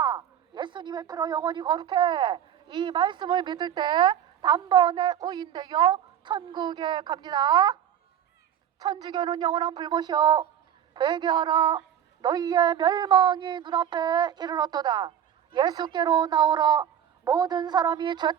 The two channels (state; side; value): quieter; left; 9.6 dB